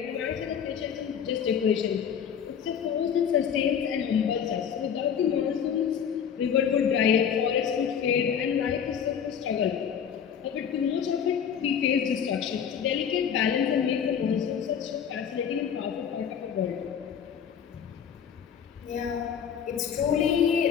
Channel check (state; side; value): quieter; right; 7.9 dB